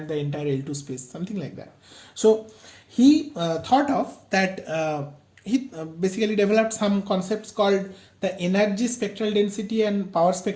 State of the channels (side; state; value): both; identical; correlation 1.00